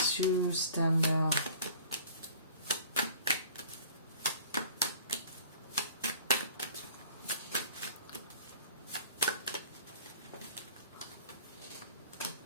you stand out?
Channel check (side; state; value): both; inverted; correlation -0.48